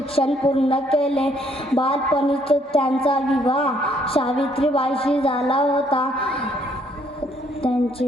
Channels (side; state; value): both; normal; correlation 0.67